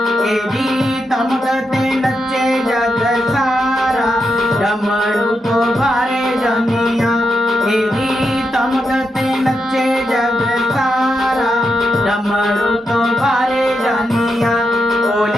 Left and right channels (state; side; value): normal; both; correlation 0.85